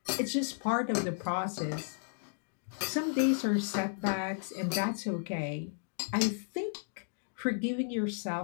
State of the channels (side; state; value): right; silent; digital silence